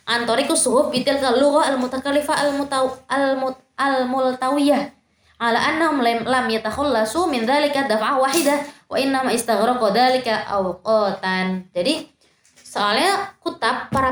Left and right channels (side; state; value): both; identical; correlation 1.00